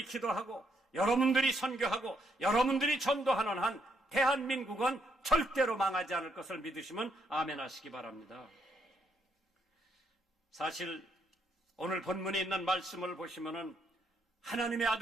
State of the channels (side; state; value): both; normal; correlation 0.74